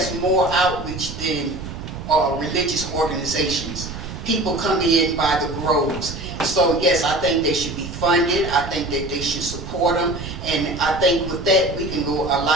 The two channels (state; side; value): noise; right; rumble, 9 dB below the sound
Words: more outreach than religious organizations? People come in by the groves. So yes, I think they should be funded. I think that they should support them. And I think with that, we can go a